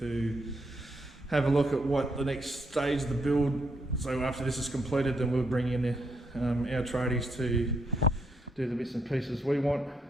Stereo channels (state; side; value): normal; both; correlation 0.77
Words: have a look at what the next stage of the build. So after this is completed, then we'll bring in our tradies to do the bits and pieces we want.